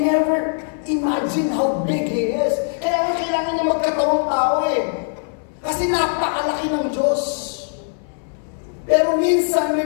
never imagine how big He is. Kaya kailangan niya magkatawang tao eh. Kasi napakalaki ng Diyos. Pero minsan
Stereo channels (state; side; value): silent; right; 61 dB below the other